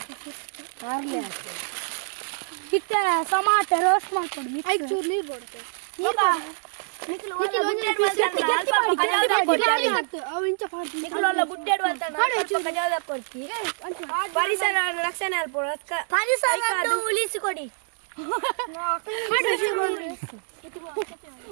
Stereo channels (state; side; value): silent; left; digital silence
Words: ಇತ್ತೆ ಸಮಾತ ರೋಸ್ಟ್ ಮಾಡ್ಕೊಂಡು ಐದು ಚೂರು ನೀರು ಬರುತ್ತೆ ಪರಿಸರ ರಕ್ಷಣೆ ಉಳಿಸಿಕೊಡಿ